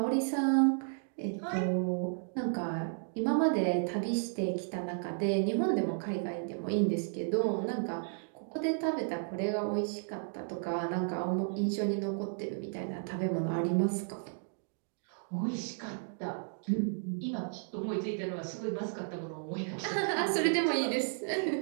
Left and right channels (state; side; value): silent; left; digital silence